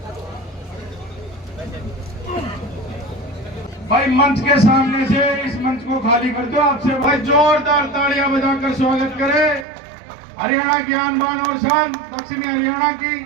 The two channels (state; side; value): drops out; left; at 9.7 s